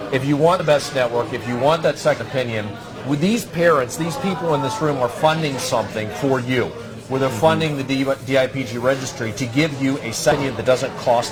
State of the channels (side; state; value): both; identical; correlation 1.00